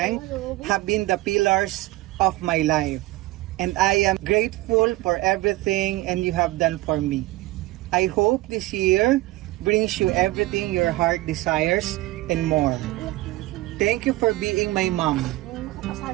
have been the pillars of my life. And I am grateful for everything and you have done for me. I hope this year brings you everything your heart desires and more. Thank you for being my mom.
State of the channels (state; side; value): quieter; left; 18.6 dB